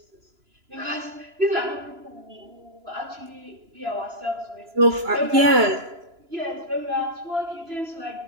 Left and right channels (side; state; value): left; late; 2.9 ms